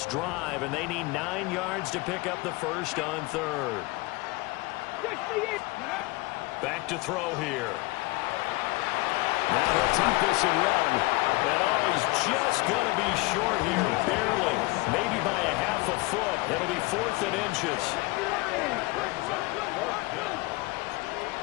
drive, and they need 9 yards to pick up the first on third. Back to throw here. Now he'll take this and run. And oh, he's just going to be short here, barely. Maybe by a half a foot. It'll be 4th and inches.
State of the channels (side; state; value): right; quieter; 23.0 dB